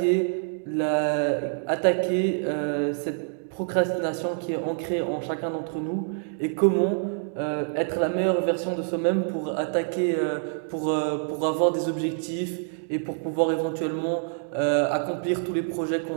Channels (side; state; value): left; silent; digital silence